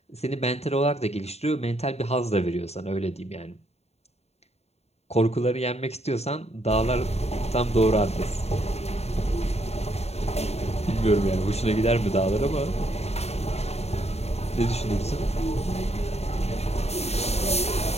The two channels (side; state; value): right; late; 0.31 ms